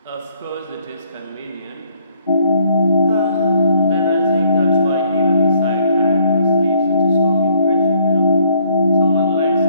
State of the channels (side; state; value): both; inverted; correlation -0.66